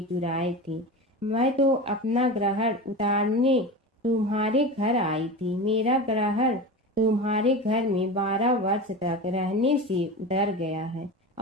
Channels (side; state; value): both; normal; correlation 0.27